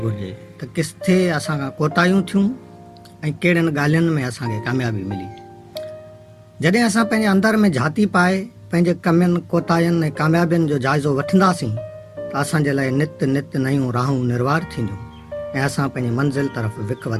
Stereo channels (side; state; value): both; identical; correlation 1.00